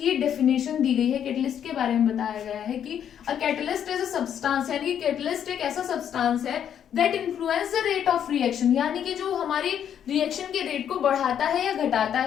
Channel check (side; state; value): right; quieter; 9.1 dB